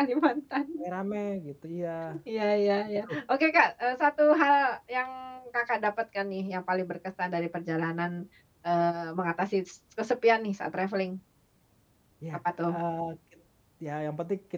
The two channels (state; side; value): identical; both; correlation 1.00